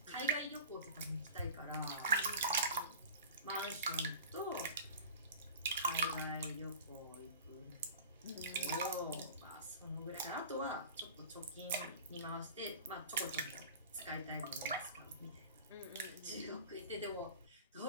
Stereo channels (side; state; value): both; inverted; correlation -0.38